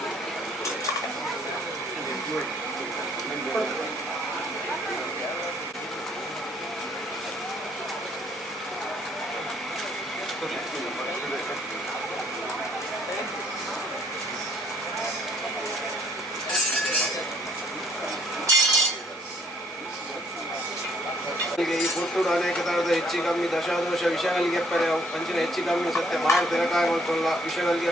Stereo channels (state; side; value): normal; both; correlation 0.63